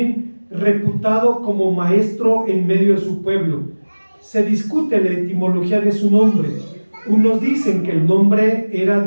reputado como maestro en medio de su pueblo. Se discute la etimología de su nombre. Unos dicen que el nombre era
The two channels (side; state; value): both; inverted; correlation -1.00